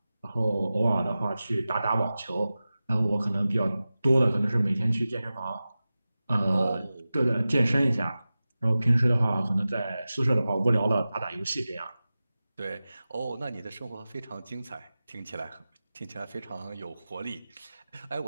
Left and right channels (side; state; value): both; inverted; correlation -0.95